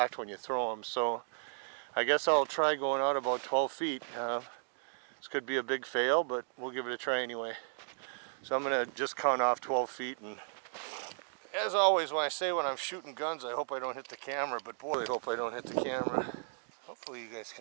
when you throw them. So I guess I'll try going out about 12 feet. This could be a big fail, but we'll give it a try anyway. So I'm gonna just count off 12 feet, and as always when I say when I'm shooting guns, I hope I don't hit the camera, but boy, I hope I don't hit the camera. Hopefully you guys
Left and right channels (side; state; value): left; silent; digital silence